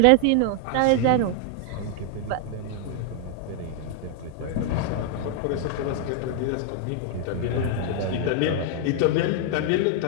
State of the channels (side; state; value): both; different; correlation 0.00